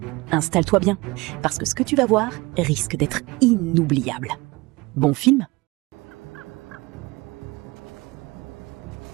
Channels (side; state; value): left; quieter; 23.1 dB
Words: Installe-toi bien, parce que ce que tu vas voir risque d'être inoubliable. Bon film